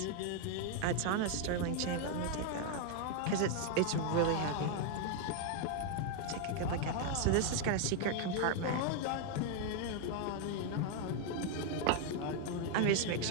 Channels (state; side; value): different; both; correlation 0.01